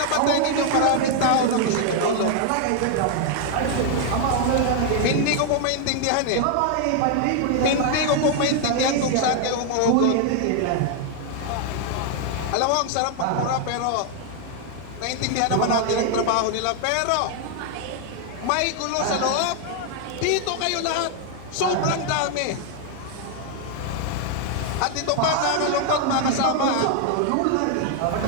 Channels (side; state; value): both; different; correlation 0.00